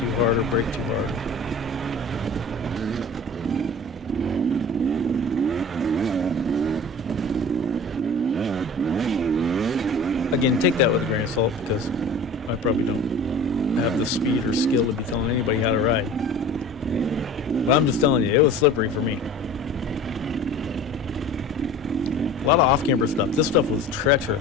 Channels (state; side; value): normal; both; correlation 0.40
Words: hard or brake too hard. Again, take that with a grain of salt because I probably don't have the speed or skill to be telling anybody how to ride. But I'm just telling you, it was slippery for me. A lot of off-camber stuff. This stuff was